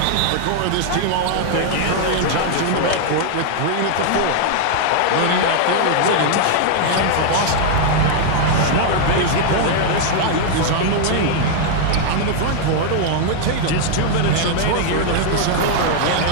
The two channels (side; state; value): both; different; correlation 0.00